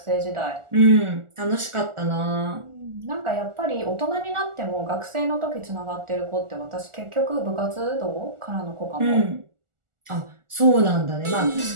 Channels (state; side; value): late; left; 1.4 ms